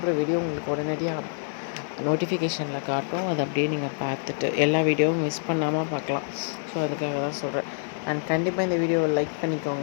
வீடியோ உங்களுக்கு உடனடியாக நோட்டிஃபிகேஷனில் காட்டும். அதை அப்படியே நீங்கள் பார்த்துட்டு எல்லா வீடியோவும் மிஸ் பண்ணாமல் பார்க்கலாம். ஸோ அதுக்காக தான் சொல்கிறேன். அண்ட் கண்டிப்பாக இந்த வீடியோவை லைக்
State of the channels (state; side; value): silent; right; digital silence